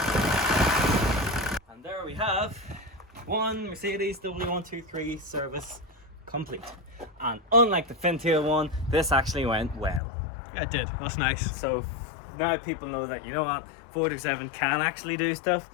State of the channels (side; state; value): right; drops out; at 10.0 s